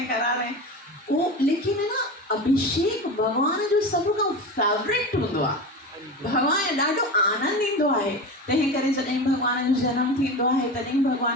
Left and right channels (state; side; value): normal; both; correlation 0.26